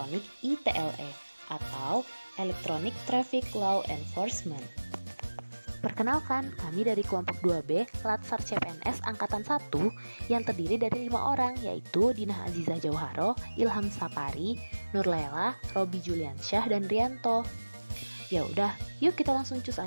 ITLE atau Electronic Traffic Law Enforcement. Perkenalkan, kami dari kelompok 2B Latsar CPNS Angkatan 1 yang terdiri dari 5 orang, yaitu Dinah Azizah Jauharo, Ilham Sapari, Nurlela, Robi Juliansyah, dan Rianto. Ya udah, yuk kita langsung cus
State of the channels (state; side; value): inverted; both; correlation -1.00